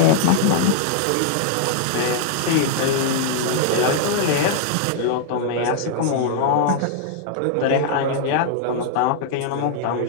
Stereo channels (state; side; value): different; both; correlation -0.01